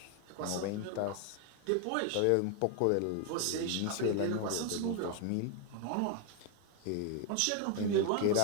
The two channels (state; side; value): different; both; correlation 0.01